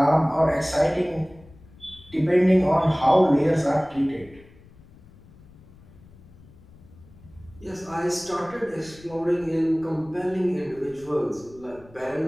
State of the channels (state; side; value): noise; left; rumble, 24 dB below the sound